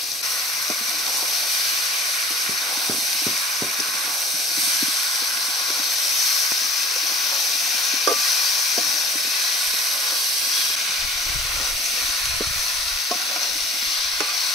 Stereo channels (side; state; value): both; normal; correlation 0.44